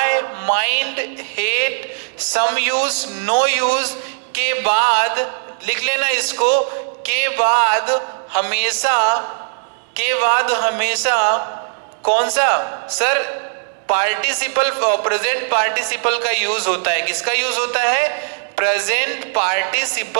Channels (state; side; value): silent; left; digital silence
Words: mind, hate, some use, no use के बाद लिख लेना इसको, के बाद हमेशा कौन सा सर, पार्टिसिपल, प्रेजेंट पार्टिसिपल का यूज होता है, किसका यूज होता है, प्रेजेंट